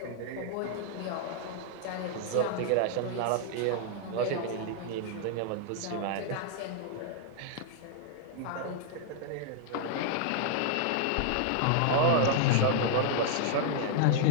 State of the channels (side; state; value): both; different; correlation 0.00